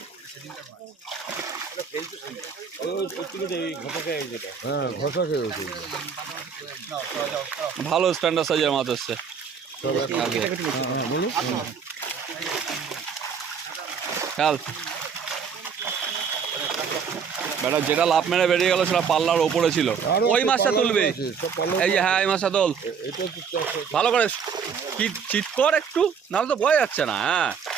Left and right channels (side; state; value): left; quieter; 6.6 dB